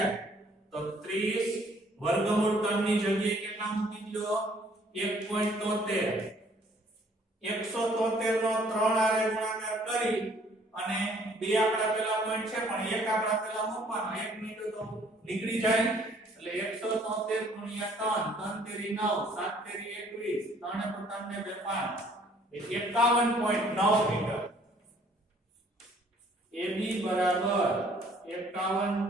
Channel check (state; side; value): normal; both; correlation 0.60